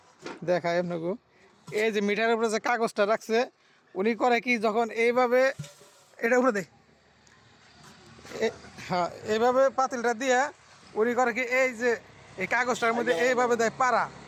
দেখায় আপনাকে। এই যে মিটারের উপরে যে কাগজটা রাখছে, উনি করে কি যখন এইভাবে এটা উপরে দেয়, হ্যাঁ এইভাবে পাতিলটা দিয়ে উনি করে কি এই যে এই কাগজটার মধ্যে এইভাবে দেয় পাড়া।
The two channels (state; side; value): identical; both; correlation 1.00